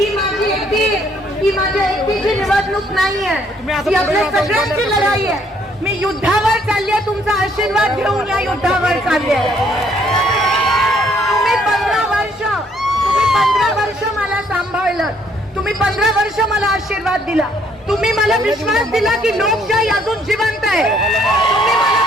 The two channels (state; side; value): normal; both; correlation 0.66